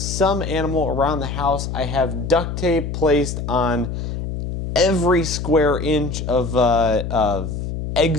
some animal around the house. I have duct tape placed on every square inch of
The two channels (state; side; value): noise; left; hum, 5 dB below the sound